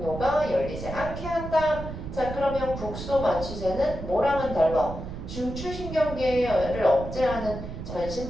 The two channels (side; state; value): right; noise; rumble, 9 dB below the sound